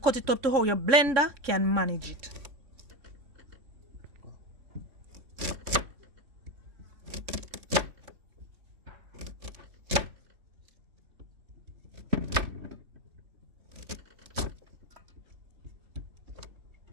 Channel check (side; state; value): left; late; 3.6 ms